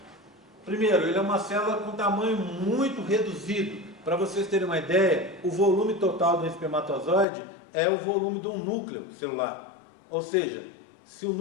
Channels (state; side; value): drops out; right; at 7.2 s